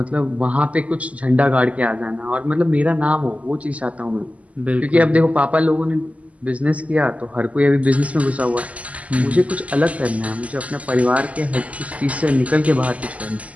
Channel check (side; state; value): left; late; 0.069 ms